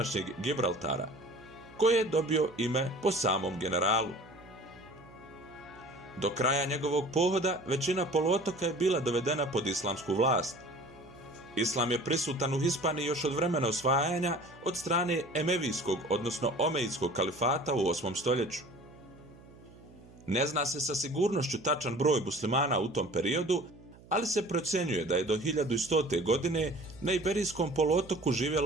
Gibraltara, koje je dobio ime po samom generalu. Do kraja njegovog pohoda većina poluotoka je bila dovedena pod islamsku vlast. Islam je prisutan u Hispaniji još od vremena osvajanja od strane Emevijskog, odnosno Omejidskog kalifata u 8. stoljeću. Ne zna se sa sigurnošću tačan broj muslimana u tom periodu, ali se procjenjuje da je do 1100. godine na Iberijskom poluotoku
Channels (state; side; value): noise; right; hum, 22 dB below the sound